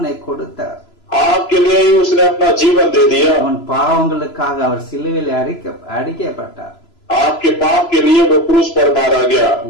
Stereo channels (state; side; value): late; right; 3.0 ms